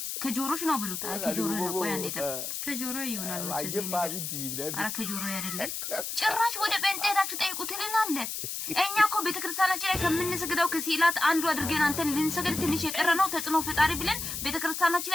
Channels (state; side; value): noise; left; hiss, 5 dB below the sound